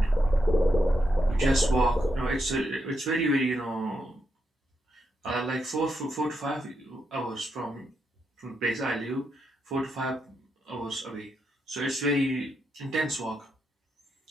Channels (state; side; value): normal; both; correlation 0.82